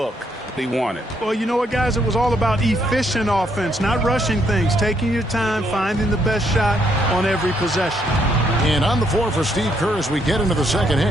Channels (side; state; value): both; normal; correlation 0.73